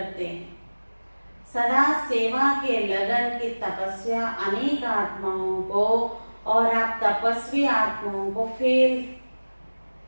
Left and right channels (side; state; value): both; inverted; correlation -1.00